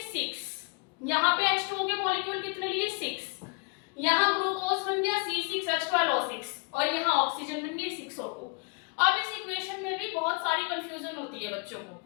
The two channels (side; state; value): right; quieter; 32.7 dB